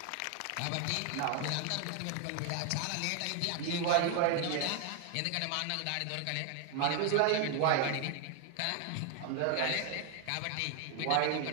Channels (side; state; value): both; different; correlation 0.00